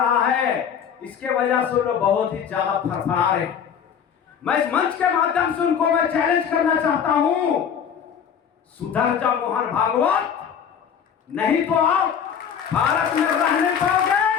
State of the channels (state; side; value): quieter; right; 7.8 dB